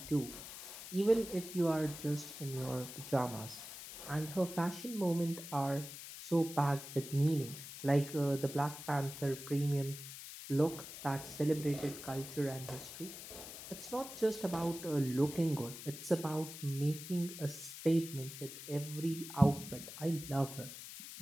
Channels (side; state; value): left; noise; hiss, 11 dB below the sound